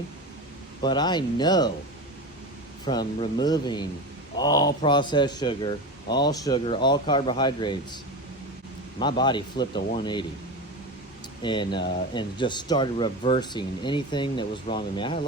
But I know from removing all processed sugar, all carbohydrates, my body flipped a 180 and just started reversing anything that was wrong with me. I had a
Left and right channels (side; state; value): both; normal; correlation 0.24